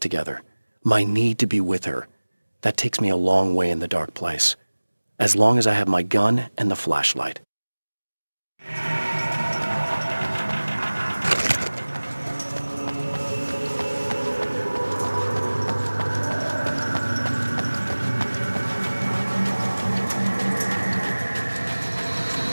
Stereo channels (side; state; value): both; inverted; correlation -1.00